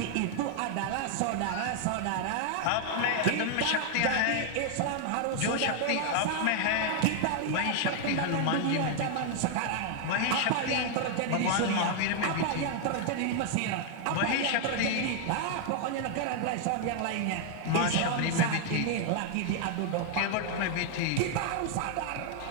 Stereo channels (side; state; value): both; different; correlation 0.00